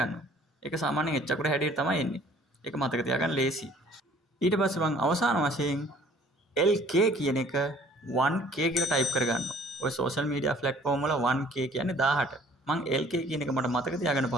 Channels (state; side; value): normal; both; correlation 0.55